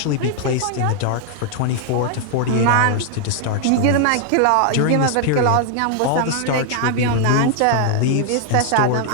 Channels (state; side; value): different; both; correlation 0.00